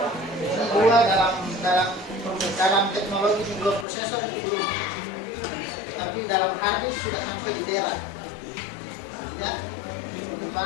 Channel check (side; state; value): right; drops out; at 3.9 s